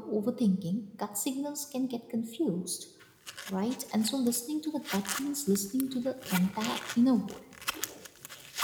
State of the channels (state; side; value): identical; both; correlation 1.00